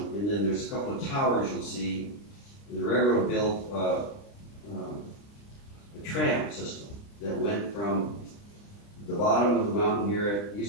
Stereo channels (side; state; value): right; late; 30 ms